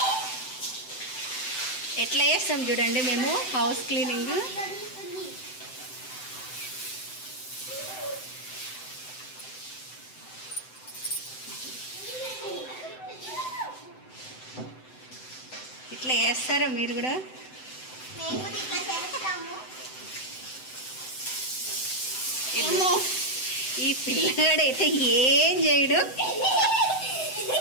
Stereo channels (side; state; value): right; late; 7.8 ms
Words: ఎట్లా చేస్తాం చూడండి మేము హౌస్ క్లీనింగ్. ఇట్లా చేస్తారా మీరు కూడా? ఈ పిల్లగాడైతే ఏం చేయడు.